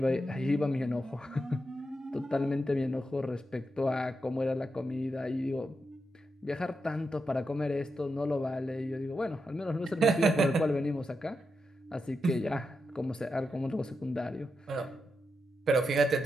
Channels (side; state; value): both; normal; correlation 0.86